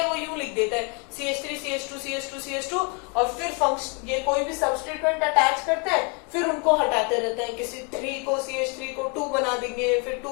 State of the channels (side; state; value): right; quieter; 33.0 dB